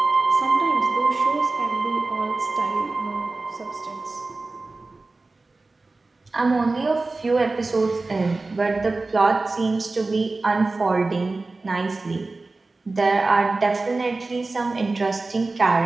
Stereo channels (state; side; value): quieter; left; 3.4 dB